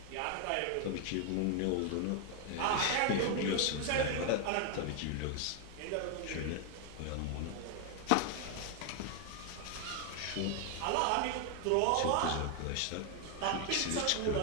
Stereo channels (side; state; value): both; different; correlation 0.00